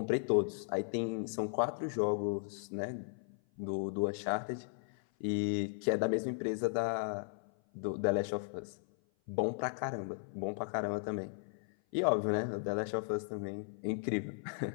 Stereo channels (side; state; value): right; silent; 54 dB below the other